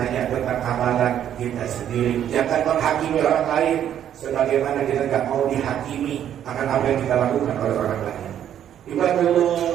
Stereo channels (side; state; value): left; quieter; 10.2 dB